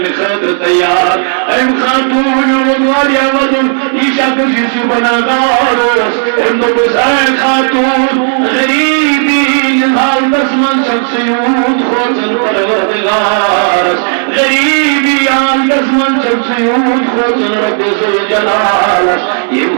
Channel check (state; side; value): silent; left; 58 dB below the other